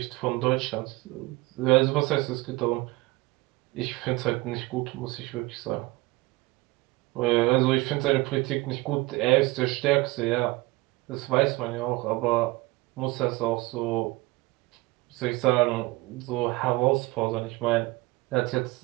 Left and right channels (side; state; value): left; quieter; 22.0 dB